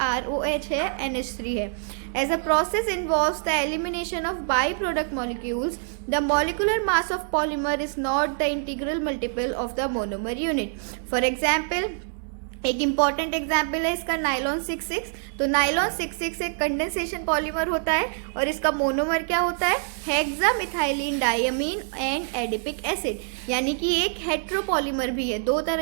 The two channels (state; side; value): silent; left; digital silence